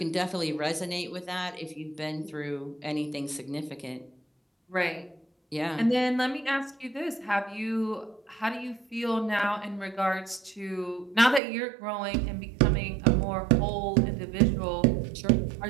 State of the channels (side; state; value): left; drops out; at 11.4 s